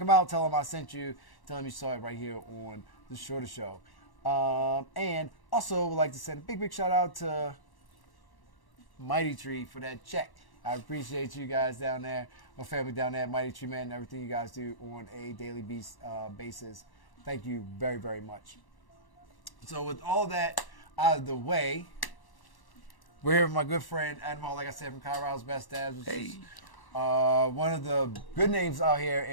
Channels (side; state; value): right; late; 1.1 ms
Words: out. Tell them I sent you. Tell them you saw it right here on The Shorter Show. And also would like to send a big shout out to Mighty Tree for that check. I appreciate you guys down there, my family down there at Mighty Tree, man, and everything you guys do on a daily basis. Thank you very much. So with all that out of the way, we're here with my good friend Adam Hall, like I said, from Colorado's Best Dabs, which is one of the good names out here